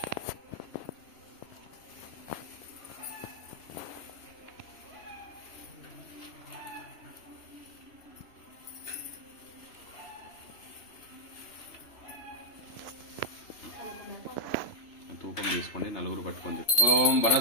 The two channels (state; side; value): late; right; 3.0 ms